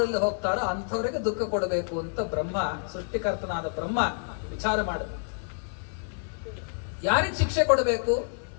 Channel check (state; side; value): silent; right; digital silence